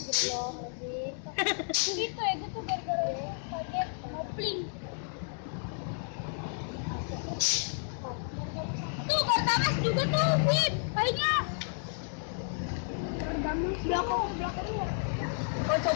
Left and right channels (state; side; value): silent; right; 57 dB below the other